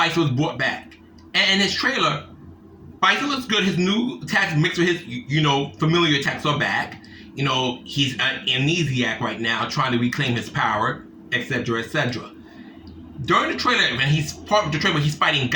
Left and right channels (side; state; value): both; identical; correlation 1.00